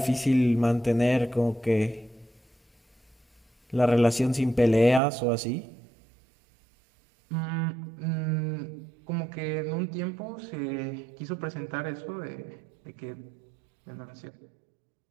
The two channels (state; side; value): drops out; left; at 5.0 s